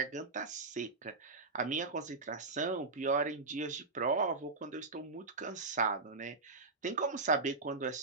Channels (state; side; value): quieter; left; 3.8 dB